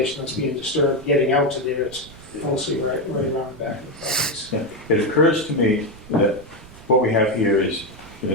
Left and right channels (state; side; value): noise; right; rumble, 20 dB below the sound